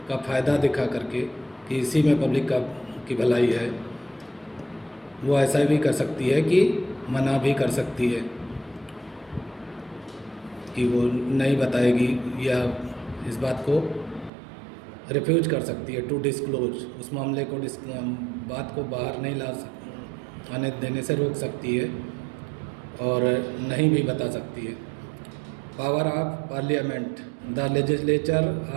का फ़ायदा दिखा करके कि इसी में पब्लिक की भलाई है, वो ऐसा भी कर सकती है कि मना भी कर सकती है कि वो नहीं बताएगी, या इस बात को रिफ्यूज कर सकती है टू डिस्क्लोज, उस मामले को बात को बाहर नहीं आने देने से रोक सकती है और नहीं भी बता सकती है। Power of parliament, the legislature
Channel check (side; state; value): left; drops out; at 14.3 s